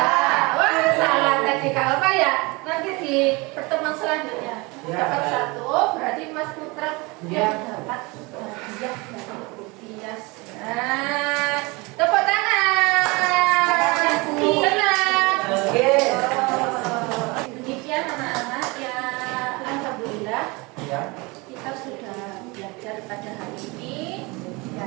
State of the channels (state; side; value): quieter; left; 25.8 dB